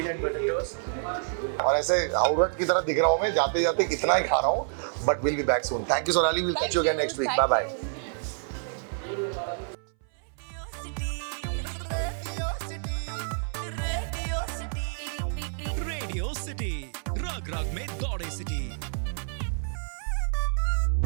बटर टोस्ट. और ऐसे आउटलेट की तरह दिख रहा हूँ मैं जाते जाते कितना ही खा रहा हूँ. But will be back soon. Thank you Sonali. Will Thank catch you again you, next week. Bye thank bye. you. Radio city रग रग में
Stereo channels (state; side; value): silent; left; 59 dB below the other